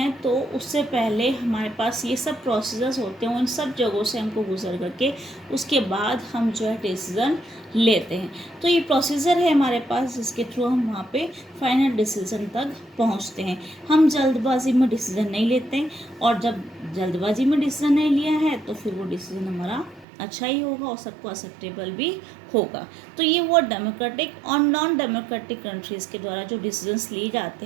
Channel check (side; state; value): left; drops out; at 20.1 s